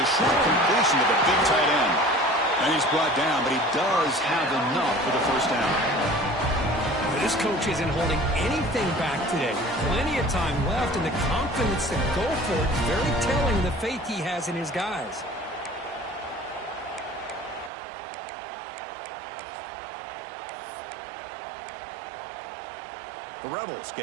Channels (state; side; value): drops out; left; at 17.7 s